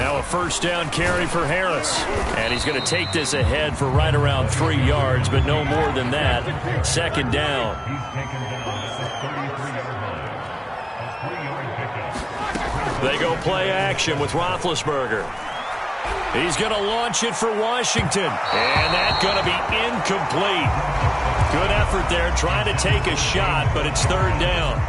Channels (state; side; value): identical; both; correlation 1.00